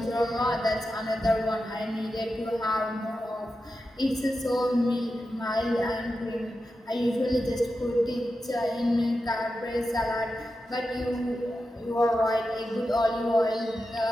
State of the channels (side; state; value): both; normal; correlation 0.90